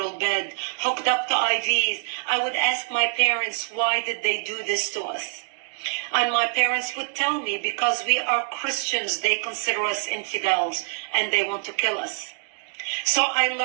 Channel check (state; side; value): silent; left; digital silence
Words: bed, hooked up to IVs, I would ask my parents, why did they do this to us? And my parents would tell me, because we are Christians, they consider us infidels and they want to kill us. So I